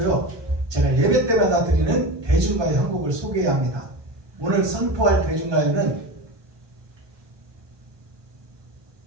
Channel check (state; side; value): late; left; 1.2 ms